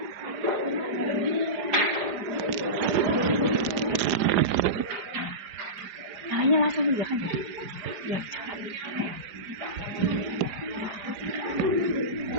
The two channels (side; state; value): left; late; 4.9 ms